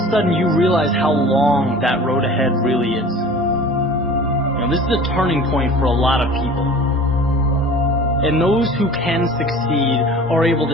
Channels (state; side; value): normal; both; correlation 0.42